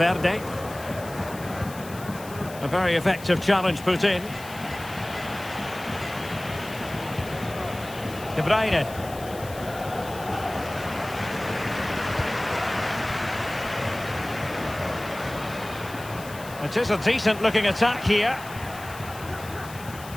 A very effective challenge put in. De Bruyne. It is a decent looking attack here.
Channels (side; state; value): left; noise; hiss, 16 dB below the sound